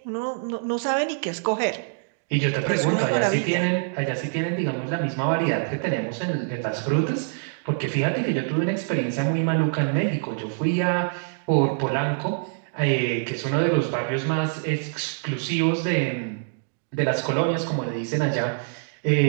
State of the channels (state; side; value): silent; left; digital silence